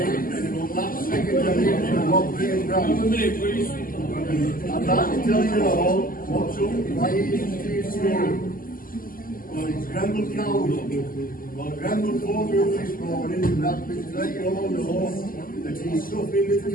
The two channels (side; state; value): right; late; 0.41 ms